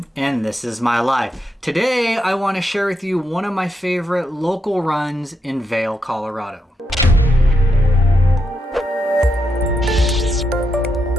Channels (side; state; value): both; normal; correlation 0.83